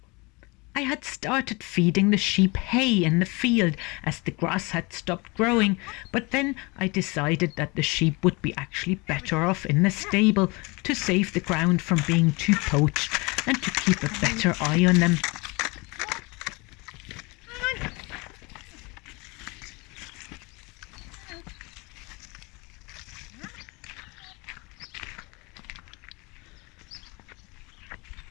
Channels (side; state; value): right; quieter; 26.8 dB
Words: I had started feeding the sheep hay in the field as the grass had stopped growing, but then I decided that the sheep would be actually better off in the stable to save the ground from being too poached and to keep a better eye on them.